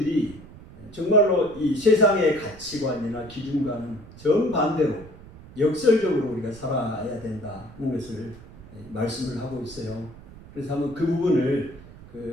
정말로 이 세상의 가치관이나 기준과는 정반대로 역설적으로 우리가 살아야 된다는 것을 말씀을 하고 있어요. 그래서 한번 그 부분을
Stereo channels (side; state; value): right; noise; rumble, 19 dB below the sound